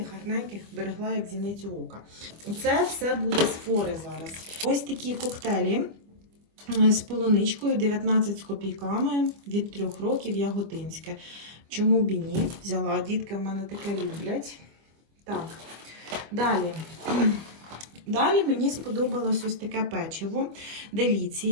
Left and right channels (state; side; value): late; left; 25 ms